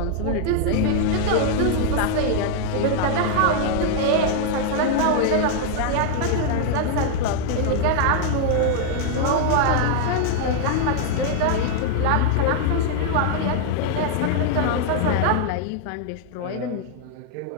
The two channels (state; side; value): different; both; correlation 0.00